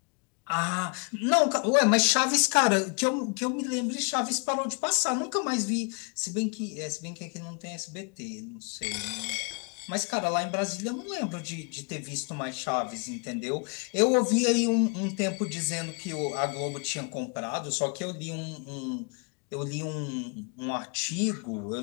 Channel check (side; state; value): right; quieter; 34.7 dB